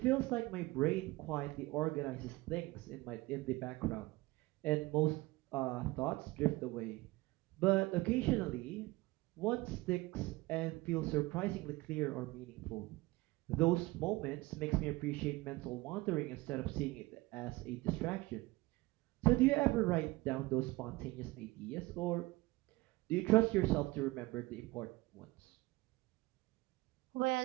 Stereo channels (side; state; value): left; quieter; 20.9 dB